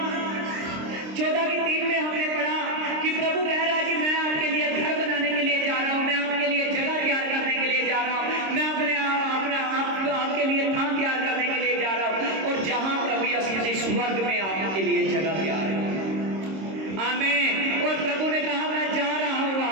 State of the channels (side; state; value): left; late; 26 ms